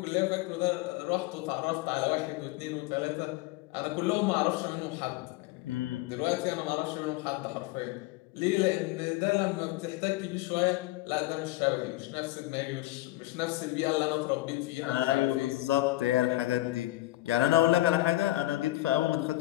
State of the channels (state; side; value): quieter; right; 17.7 dB